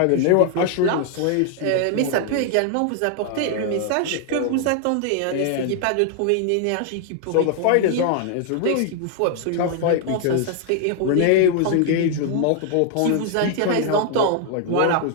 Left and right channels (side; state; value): both; different; correlation 0.00